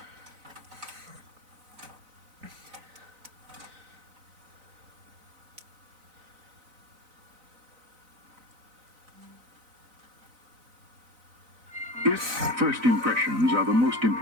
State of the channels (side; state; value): left; late; 4.0 ms